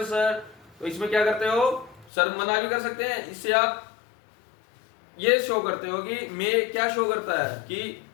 sir, तो इसमें क्या करते हो, सर मना भी कर सकते हैं, इससे आप ये शो करते हो कि मे क्या शो करता है कि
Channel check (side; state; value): right; drops out; at 2.1 s